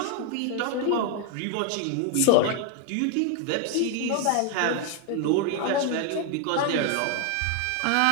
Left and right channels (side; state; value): both; different; correlation 0.01